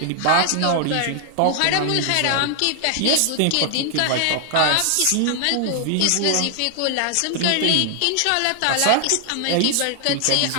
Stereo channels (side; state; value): both; different; correlation 0.00